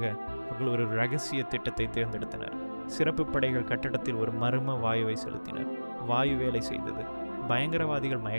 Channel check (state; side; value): inverted; both; correlation -1.00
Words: அவர்கள் ஒரு இரகசிய திட்டத்தை தேர்ந்தெடுத்தனர். சிறப்பு படைகள் கட்டடத்தில் ஒரு மர்ம வாயுவை செலுத்தினர். வாயு வேலை செய்தது. பயங்கரவாதிகள்